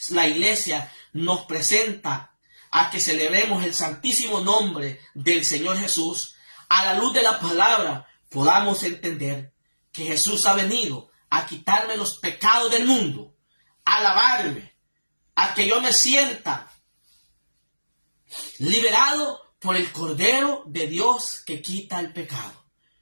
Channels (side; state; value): both; inverted; correlation -1.00